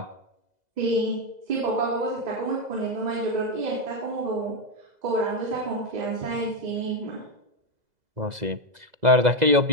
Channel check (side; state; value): left; late; 2.0 ms